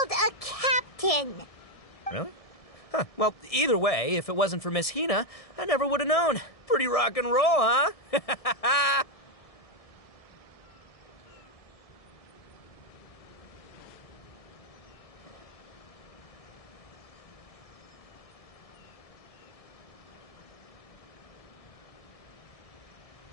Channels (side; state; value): right; late; 1.7 ms